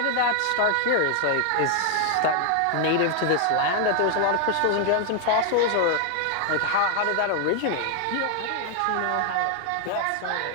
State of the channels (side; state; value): both; different; correlation 0.00